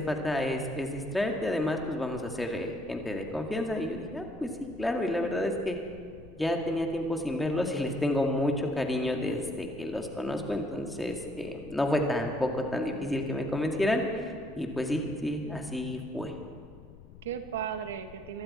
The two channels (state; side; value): noise; left; rumble, 19 dB below the sound